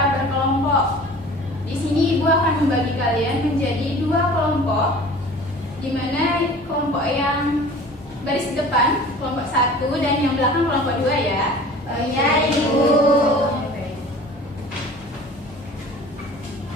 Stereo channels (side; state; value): both; normal; correlation 0.43